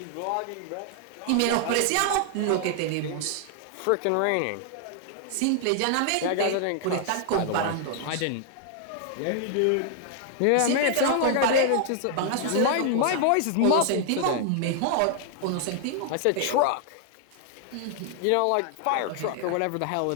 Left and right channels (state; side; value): different; both; correlation 0.00